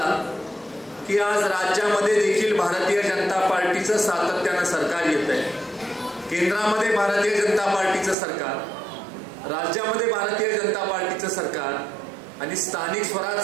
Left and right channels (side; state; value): left; drops out; at 8.2 s